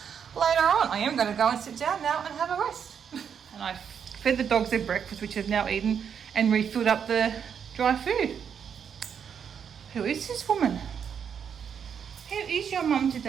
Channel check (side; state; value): left; quieter; 7.6 dB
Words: later on. I am going to go and sit down now and have a rest. And I fed the dogs their breakfast, which they've now eaten, and refilled up the dry food. Who is this woman? How is your mum